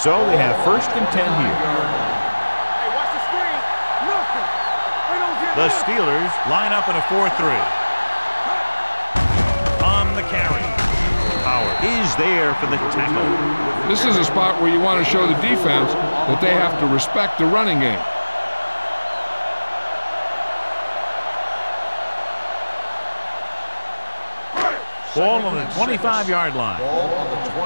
So they have first and 10 here. Hey, watch the screen. Nothing. They don't get The this. Steelers line up in a 4-3. On the carry. Howard is there for the tackle. This is a spot where you want to show the defense that they have to respect the running game. Ball on the 25-yard line. Ball on the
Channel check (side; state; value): both; inverted; correlation -1.00